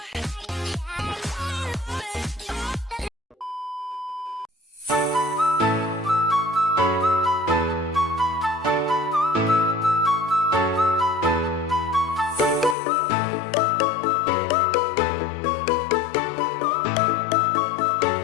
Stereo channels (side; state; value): right; drops out; at 12.8 s